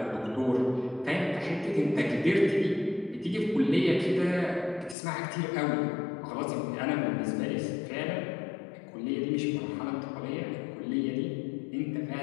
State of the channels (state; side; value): drops out; right; at 5.0 s